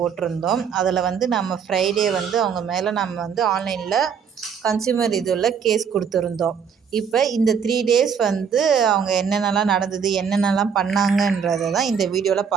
அதில் நம்ம ஃப்ரைடே அவங்க மேலே நம்ம ஆன்லைனில் கன்சியூமர் இதில் கேஸ் கொடுத்துருந்தோம். இப்போ இந்த 3 டேஸ் அவங்க என்னென்னலாம் நடந்தது, என்னென்னலாம் பண்ணாங்கன்றதை தான் இந்த வீடியோவில்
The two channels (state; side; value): quieter; left; 7.0 dB